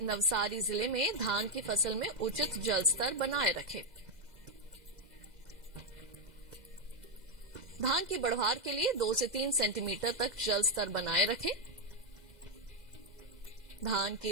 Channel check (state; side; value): late; left; 2.0 ms